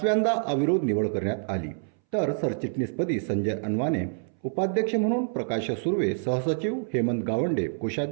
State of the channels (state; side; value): silent; left; 60 dB below the other